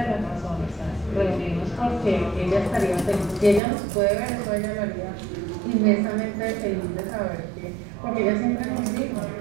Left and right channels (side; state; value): left; drops out; at 3.6 s